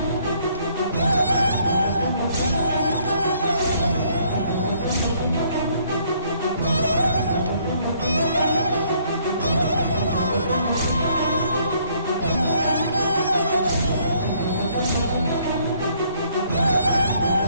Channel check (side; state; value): both; inverted; correlation -0.65